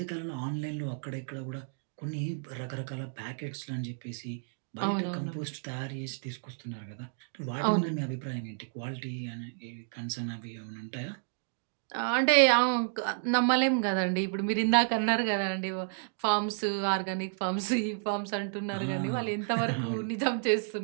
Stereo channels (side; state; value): left; silent; digital silence